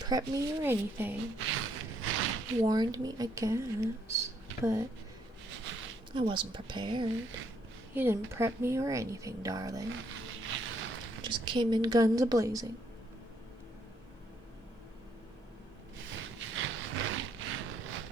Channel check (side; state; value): both; normal; correlation 0.72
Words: me or anything. Warned me, I guess, but I wasn't prepared. You didn't prep me or anything, darling. Just came in guns a-blazing.